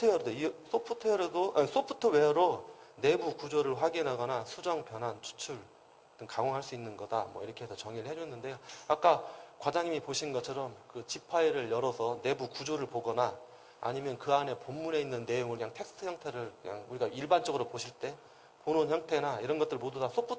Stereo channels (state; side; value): identical; both; correlation 1.00